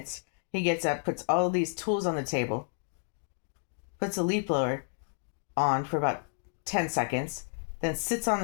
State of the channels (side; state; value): right; silent; digital silence